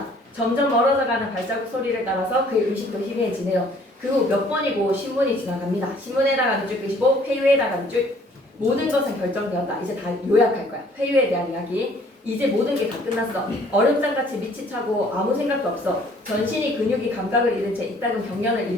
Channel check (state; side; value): normal; both; correlation 0.58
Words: 점점 멀어져가는 발자국 소리를 따라서 그의 의식도 희미해지네요. 그 후 몇 번이고 신문이 지나갑니다. 신문에다가 밑줄 끄시고 회유에다가 밑줄 모든 것은 결정되었다. 이제 다 요약할 거야. 회유에 대한 이야기. 이제 모든 게 다 끝났어. 얼음장같이 밑이 차고 아무 생각도 없어. 전신이 근육이 감각을 잃은 채 이따금 경련을